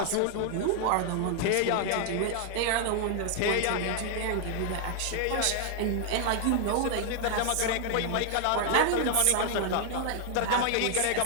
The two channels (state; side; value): different; both; correlation 0.00